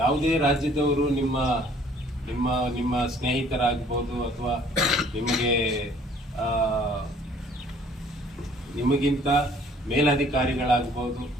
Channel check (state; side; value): normal; both; correlation 0.57